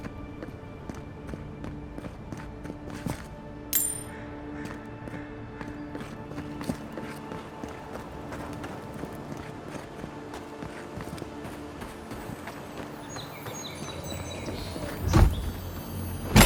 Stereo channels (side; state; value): both; identical; correlation 1.00